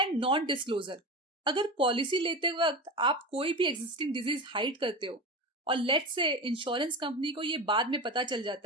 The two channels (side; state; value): both; normal; correlation 0.26